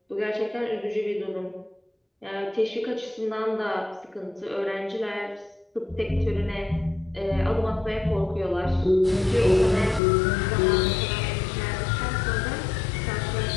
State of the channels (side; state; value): right; drops out; at 10.0 s